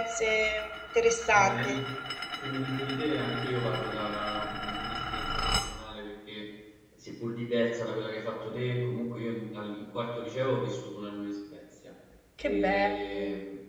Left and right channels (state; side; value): identical; both; correlation 1.00